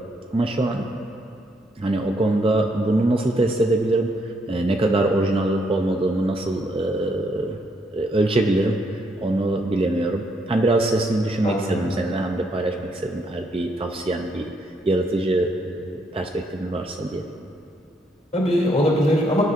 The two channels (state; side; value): normal; both; correlation 0.73